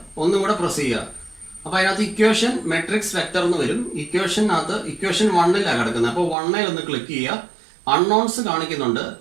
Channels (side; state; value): left; drops out; at 6.4 s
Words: ഒന്നും കൂടെ പ്രസ് ചെയ്യുക. അപ്പോൾ അതിനകത്ത് ഇക്വേഷൻ മെട്രിക്സ് വെക്ടർ എന്ന് വരും. ഇക്വേഷനകത്ത് ഇക്വേഷൻ 1ലാണ് കിടക്കുന്നത്. അപ്പോൾ 1ൽ ഒന്ന് ക്ലിക്ക് ചെയ്യുക. അൺനോൺസ് കാണിക്കുന്നുണ്ട്,